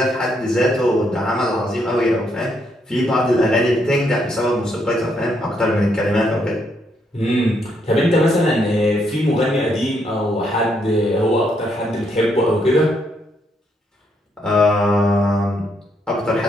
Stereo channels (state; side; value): normal; both; correlation 0.75